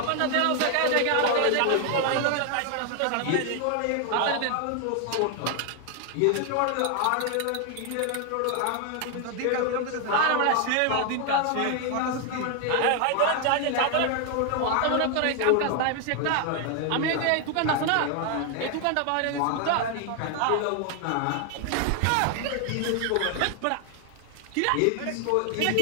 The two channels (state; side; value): different; both; correlation 0.00